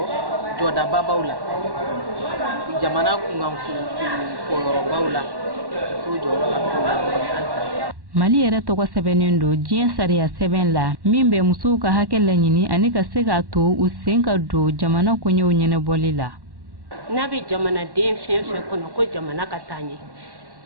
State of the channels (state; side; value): late; left; 1.1 ms